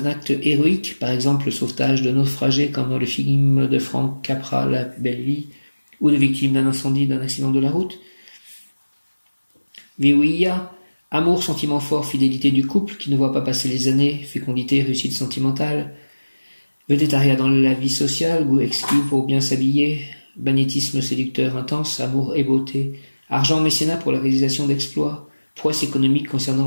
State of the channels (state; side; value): inverted; both; correlation -1.00